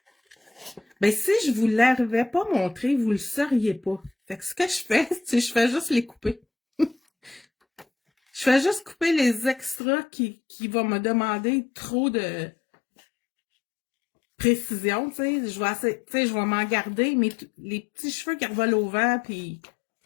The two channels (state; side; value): drops out; right; at 9.8 s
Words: Ben, si je vous l'avais pas montré, vous le sauriez pas. Fait que ce que je fais, c'est je fais juste les couper. Je fais juste couper les extras qui vont me demander trop de précision, tu sais. Je vais m'en garder, mais les petits cheveux qui revolent au vent, puis...